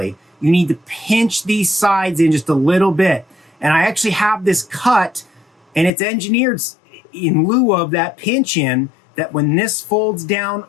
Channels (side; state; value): right; drops out; at 5.9 s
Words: You need to pinch these sides in just a little bit. And I actually have this cut, and it's engineered in lieu of that pinch in, that when this folds down